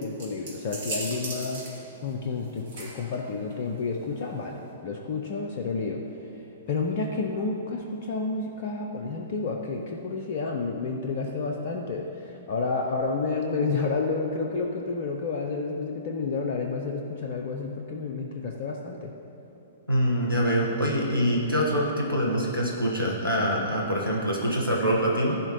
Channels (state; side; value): inverted; both; correlation -0.46